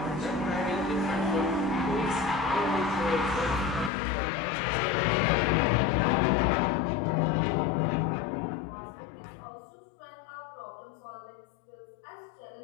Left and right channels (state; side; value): drops out; right; at 3.9 s